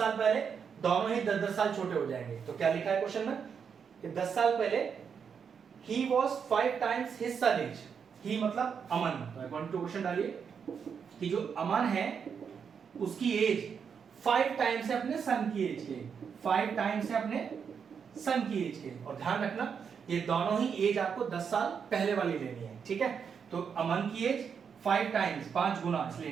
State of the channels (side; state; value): left; quieter; 6.7 dB